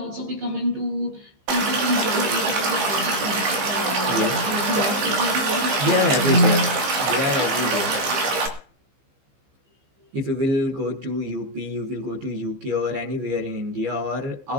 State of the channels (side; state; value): left; late; 15 ms